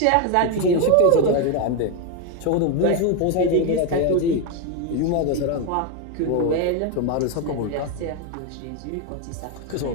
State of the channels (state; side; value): different; both; correlation 0.02